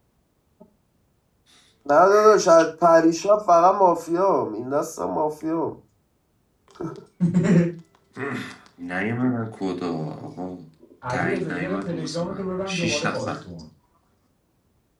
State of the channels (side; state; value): both; identical; correlation 1.00